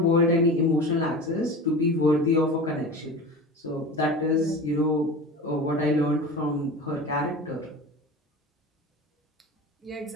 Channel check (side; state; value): both; normal; correlation 0.32